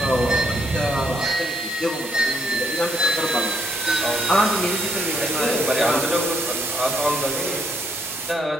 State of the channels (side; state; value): both; normal; correlation 0.71